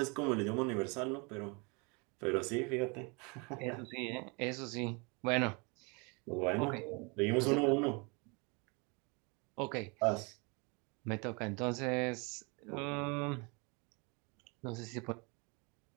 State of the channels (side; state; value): left; quieter; 30.9 dB